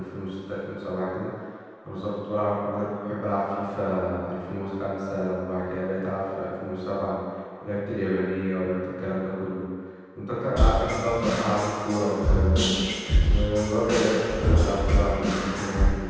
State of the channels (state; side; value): identical; both; correlation 1.00